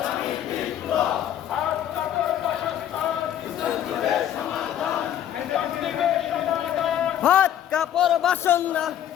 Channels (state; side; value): quieter; right; 10.9 dB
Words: ভাত কাপড় বাসন না